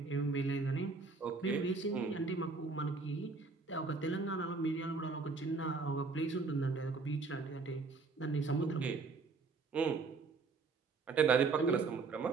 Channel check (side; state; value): left; quieter; 4.3 dB